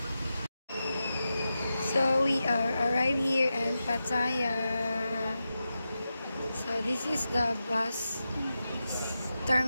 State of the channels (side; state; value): both; inverted; correlation -0.91